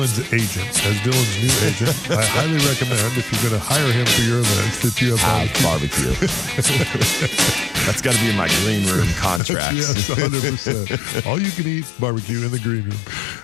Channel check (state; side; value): drops out; right; at 9.4 s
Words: agent, as Dylan's new agent, I highly recommend, if you're going to hire him for your events, that you have barbecue. That's got to be in my green room contracts. Yes, 100%. All you can eat barbecue in the green room.